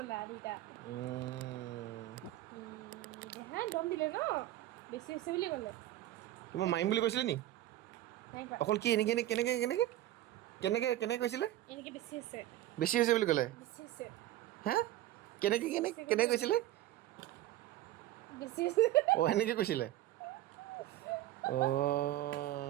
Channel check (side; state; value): left; quieter; 14.6 dB